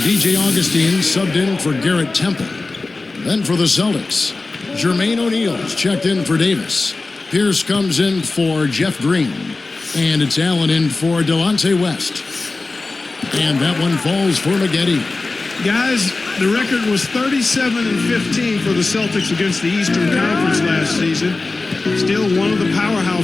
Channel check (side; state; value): right; quieter; 3.5 dB